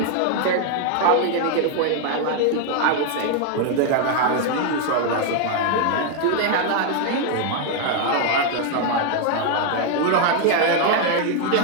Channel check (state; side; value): different; both; correlation 0.00